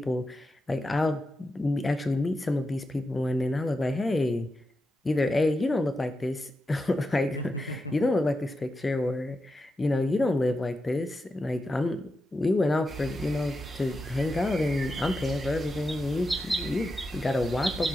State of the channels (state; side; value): normal; both; correlation 0.89